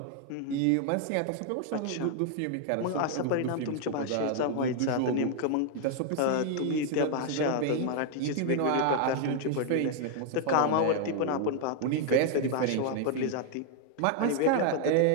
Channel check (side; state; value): both; different; correlation 0.00